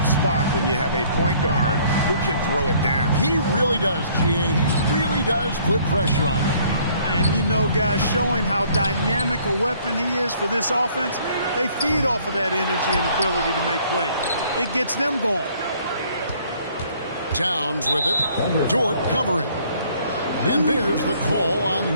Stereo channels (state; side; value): inverted; both; correlation -0.60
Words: spot when you have a point guard who can throw it down. He really does, GA. He really does put pressure on him. And you know, guys, showing how dynamic a weapon he is for this offense, they feed off of that energy and ability to make plays. It gets them going. Towns with it. Dort covering. And there's the call on